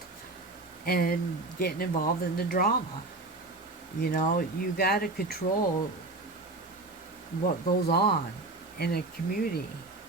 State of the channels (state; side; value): quieter; left; 3.1 dB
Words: and getting involved in the drama. You got to control what goes on in a community,